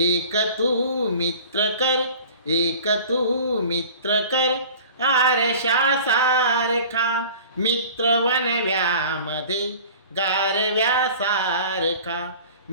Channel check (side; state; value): both; inverted; correlation -0.43